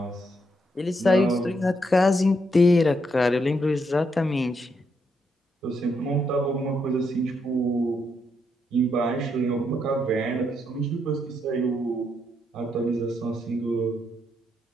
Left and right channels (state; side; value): normal; both; correlation 0.78